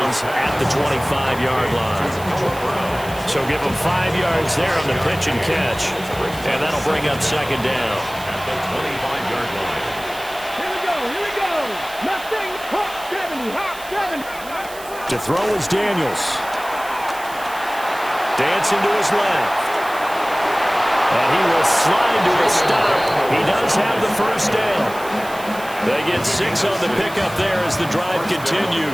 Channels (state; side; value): noise; right; hiss, 16 dB below the sound